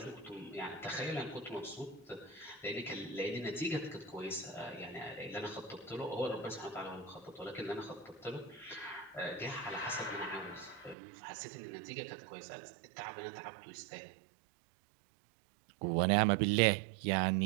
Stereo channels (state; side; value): drops out; left; at 11.0 s